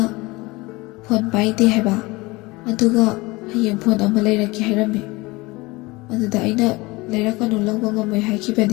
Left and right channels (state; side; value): quieter; right; 22.7 dB